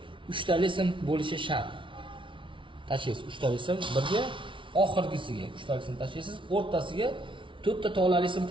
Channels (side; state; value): left; late; 0.25 ms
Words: 3 tali sim bo'lishi shart. Tashlaysiz 3 tali sim birga, oxirgisiga 3 tali sim tashlaysiz, o'rtasiga 4 ta tolali sim